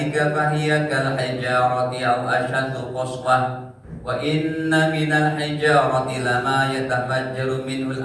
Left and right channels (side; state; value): both; identical; correlation 1.00